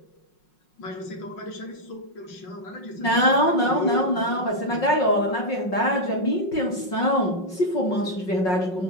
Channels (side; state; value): right; late; 5.5 ms